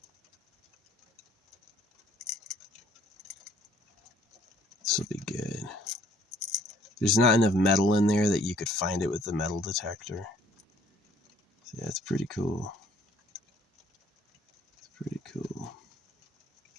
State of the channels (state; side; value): normal; both; correlation 0.60